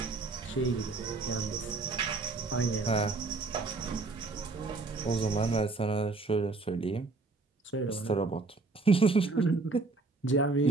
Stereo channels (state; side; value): quieter; left; 3.7 dB